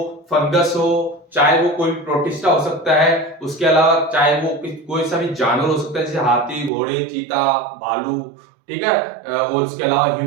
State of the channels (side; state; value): left; drops out; at 6.7 s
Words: फंगस हो, चाहे वो कोई प्रोटिस्टा हो सकता है, उसके अलावा चाहे वो कोई सा भी जानवर हो सकता है, जैसे हाथी, घोड़े, चीता, भालू, ठीक है, और उसके अलावा